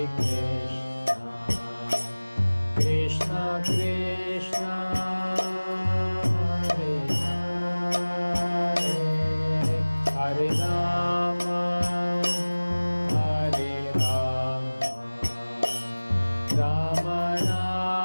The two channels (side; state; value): both; inverted; correlation -1.00